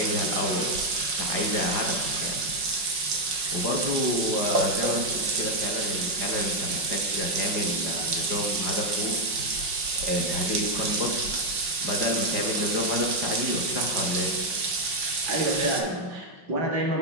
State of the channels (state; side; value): late; left; 5.4 ms